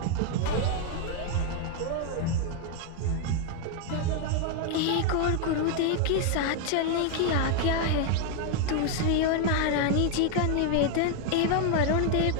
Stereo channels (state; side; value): different; both; correlation 0.00